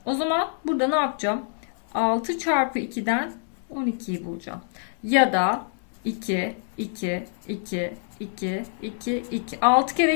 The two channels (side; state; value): right; silent; 61 dB below the other